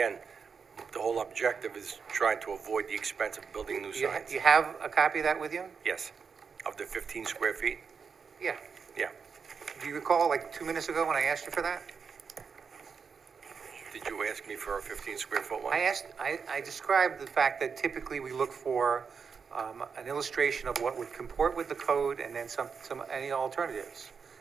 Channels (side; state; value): left; quieter; 5.9 dB